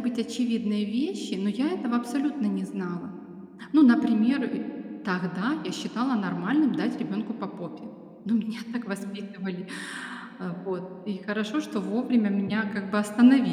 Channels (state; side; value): identical; both; correlation 1.00